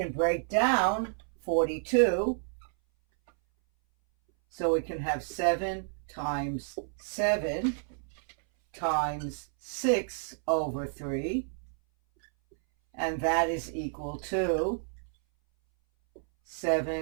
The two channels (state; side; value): silent; left; 58 dB below the other